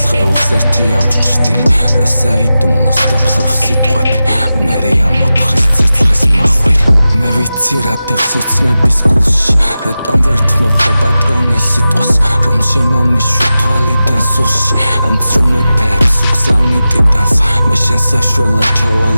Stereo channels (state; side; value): inverted; both; correlation -0.94